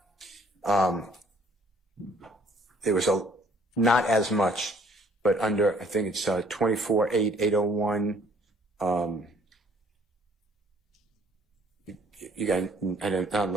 there was not as much, but under, I think it's 24-8-801, you got, I'm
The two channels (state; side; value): normal; both; correlation 0.60